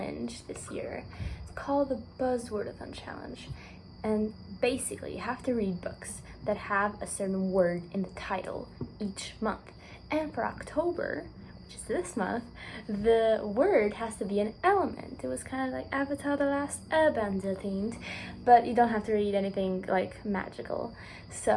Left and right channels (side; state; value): both; identical; correlation 1.00